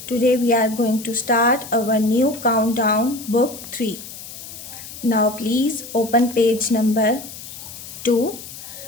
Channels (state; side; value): noise; left; hiss, 13 dB below the sound